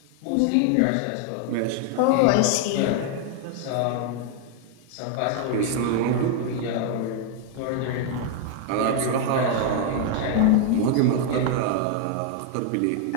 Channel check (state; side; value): different; both; correlation 0.00